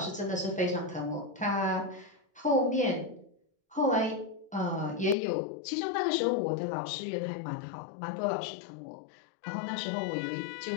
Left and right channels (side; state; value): right; drops out; at 5.2 s